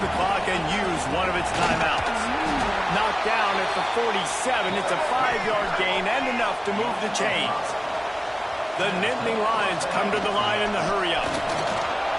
clock and use one of its timeouts. Knocked down at the 47. It's a 5-yard gain and enough to move the chains. The Nittany Lions come to the line in the hurry-up.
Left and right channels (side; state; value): both; identical; correlation 1.00